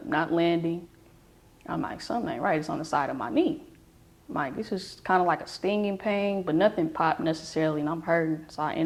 not landing. I'm like, something ain't right. It's on the side of my knee. I'm like, this is kind of like a stinging pain, but nothing popped necessarily, and I'm hurting. So I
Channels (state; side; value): identical; both; correlation 1.00